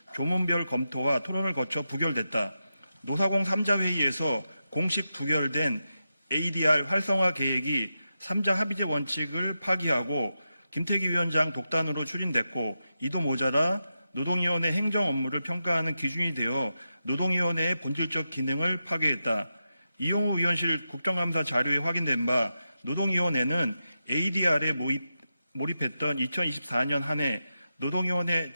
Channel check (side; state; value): both; inverted; correlation -0.89